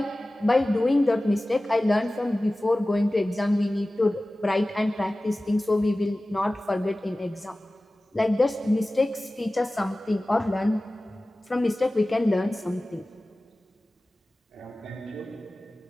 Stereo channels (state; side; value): normal; both; correlation 0.97